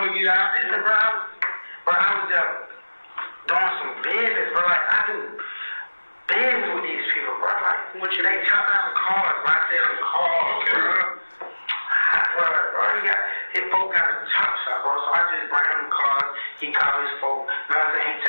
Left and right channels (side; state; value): both; inverted; correlation -1.00